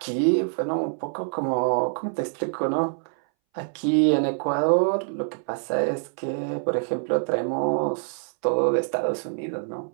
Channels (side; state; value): left; silent; 62 dB below the other